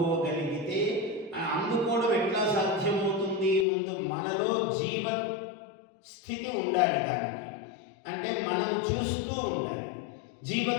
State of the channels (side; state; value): right; drops out; at 3.7 s